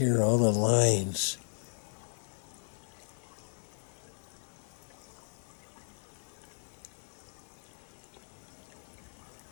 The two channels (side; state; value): right; silent; 54 dB below the other